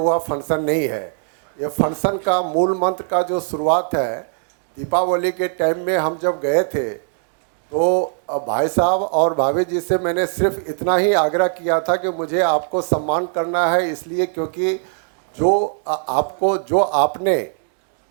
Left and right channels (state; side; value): silent; left; digital silence